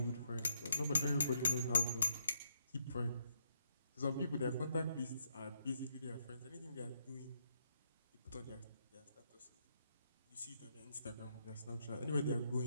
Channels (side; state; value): both; inverted; correlation -0.76